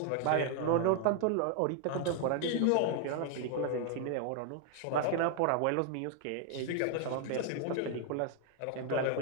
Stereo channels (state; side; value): different; both; correlation 0.00